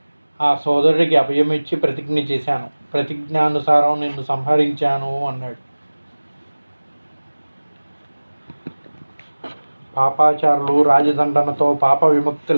ఆ సోదరుడికి అభయం ఇచ్చి ప్రతిజ్ఞ చేశాను, ప్రతిజ్ఞానుసారం నిన్ను సంహరించాను అన్నాడు. పాపాచారులు రాజదండనతో పాప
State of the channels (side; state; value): both; inverted; correlation -1.00